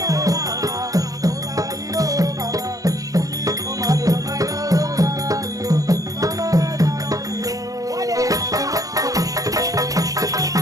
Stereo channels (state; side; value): late; left; 0.17 ms